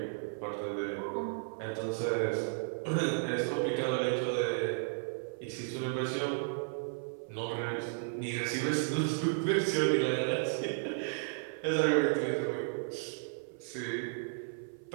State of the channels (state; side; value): silent; left; 55 dB below the other